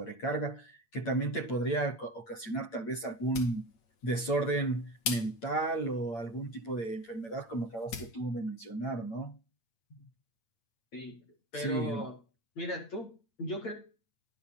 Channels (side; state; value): right; late; 8.8 ms